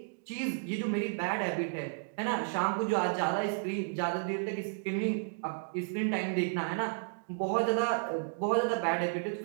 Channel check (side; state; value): left; silent; digital silence